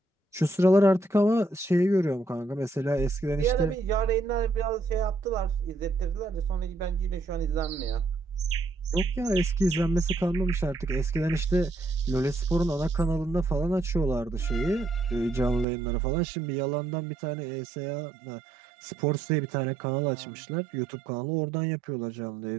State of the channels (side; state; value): left; drops out; at 15.7 s